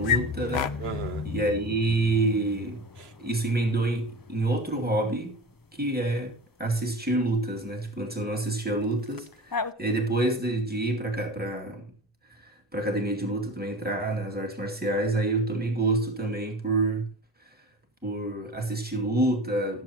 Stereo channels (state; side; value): normal; both; correlation 0.35